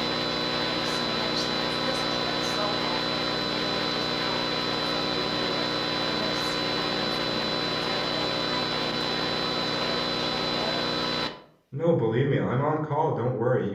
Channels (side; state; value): both; identical; correlation 1.00